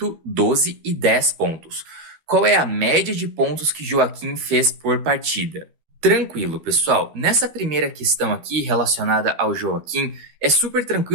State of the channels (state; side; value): late; left; 13 ms